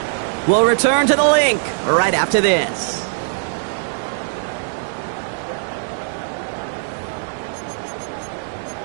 We'll return to the link right after this.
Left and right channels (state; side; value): silent; left; digital silence